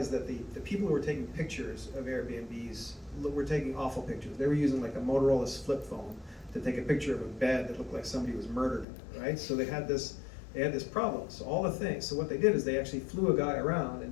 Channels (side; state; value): right; drops out; at 8.8 s